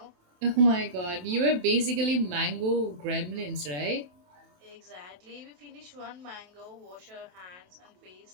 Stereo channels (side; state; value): left; late; 27 ms